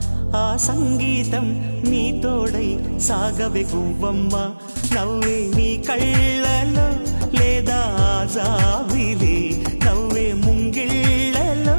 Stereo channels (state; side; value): inverted; both; correlation -1.00